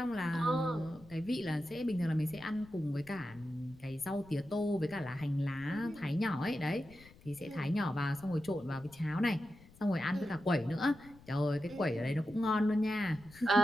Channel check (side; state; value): left; noise; rumble, 23 dB below the sound